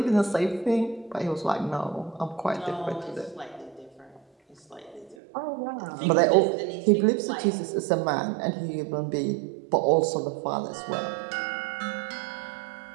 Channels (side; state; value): left; drops out; at 5.2 s